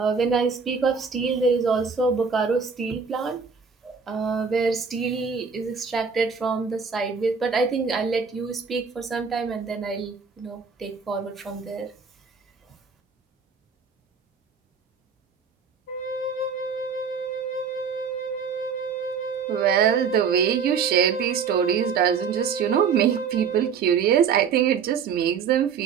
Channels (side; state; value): left; quieter; 6.1 dB